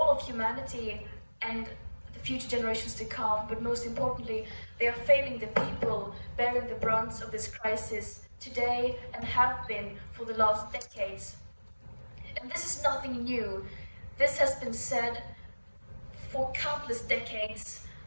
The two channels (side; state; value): both; inverted; correlation -1.00